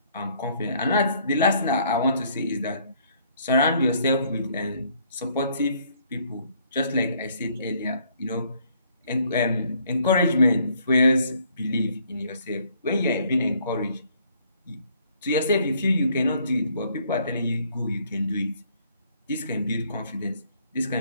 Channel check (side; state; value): both; inverted; correlation -0.65